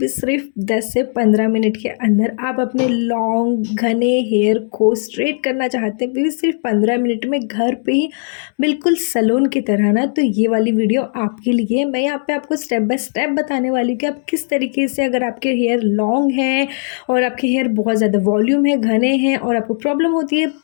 सिर्फ 10 से 15 मिनट के अंदर? आप अपने लॉन्ग घने हेयर को स्ट्रेट करना चाहते हैं, वो भी सिर्फ 15 मिनट में घर पे ही, बिल्कुल सैलून की तरह ना। तो ये वाली वीडियो आपके लिए है। मैं यहाँ पे आपको स्टेप बाय स्टेप बताने वाली हूँ कि आप किस तरीके से, अगर आपके हेयर लॉन्ग हैं और आपके हेयर बहुत ज़्यादा वॉल्यूम है, घने हैं और आपको प्रॉब्लम होती है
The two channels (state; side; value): silent; right; 67 dB below the other